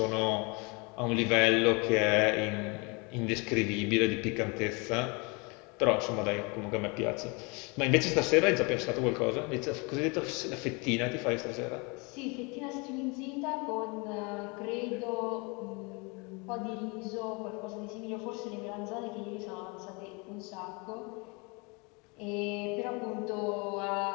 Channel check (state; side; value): quieter; right; 29.5 dB